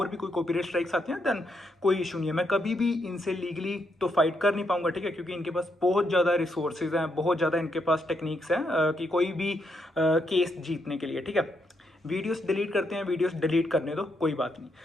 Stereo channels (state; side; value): normal; both; correlation 0.78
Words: भी कोई कॉपीराइट स्ट्राइक्स आती हैं देन कोई इशू नहीं है, मैं कभी भी इनसे लीगली तो फाइट कर नहीं पाऊंगा, ठीक है, क्योंकि इनके पास बहुत ज़्यादा रिसोर्सेज हैं, बहुत ज़्यादा इनके पास टेक्निक्स हैं कि कोई भी केस जीतने के लिए, ठीक है। वीडियोस डिलीट करते हैं, वीडियोस डिलीट करने दो, कोई बात नहीं।